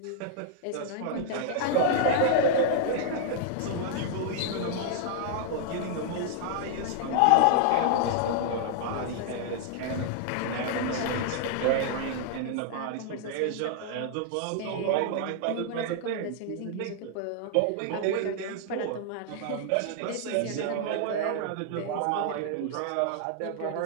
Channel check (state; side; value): different; both; correlation -0.01